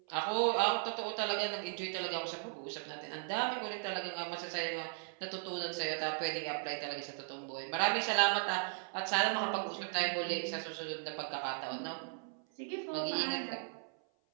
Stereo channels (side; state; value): left; silent; 53 dB below the other